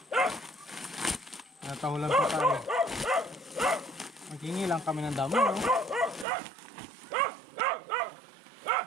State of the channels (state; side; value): drops out; left; at 6.2 s